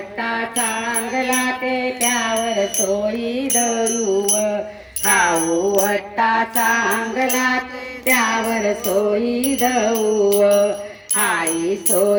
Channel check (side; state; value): both; identical; correlation 1.00